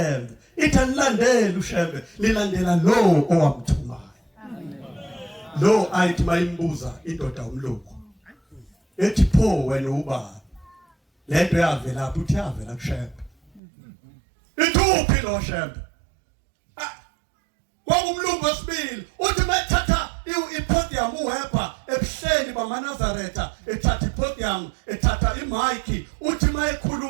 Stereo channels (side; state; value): left; drops out; at 13.6 s